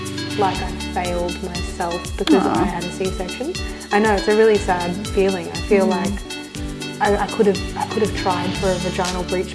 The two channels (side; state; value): both; identical; correlation 1.00